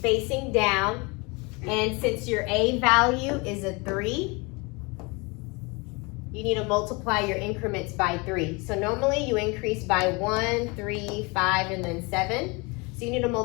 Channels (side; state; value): right; quieter; 28.0 dB